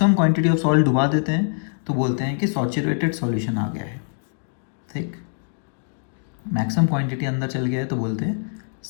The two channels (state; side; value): silent; right; 63 dB below the other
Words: क्वांटिटी ऑफ सॉल्ट डुबा देते हैं तो बोलते हैं कि सैचुरेटेड सॉल्यूशन आ गया है। ठीक, मैक्सिमम क्वांटिटी अंदर चल गया है तो बोलते हैं